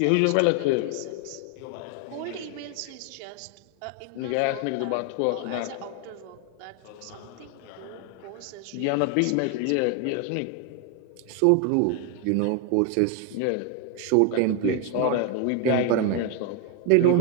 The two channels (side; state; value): both; different; correlation 0.01